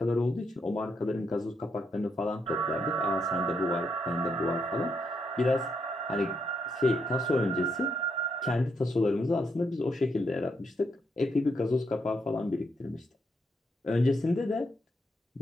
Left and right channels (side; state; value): both; normal; correlation 0.78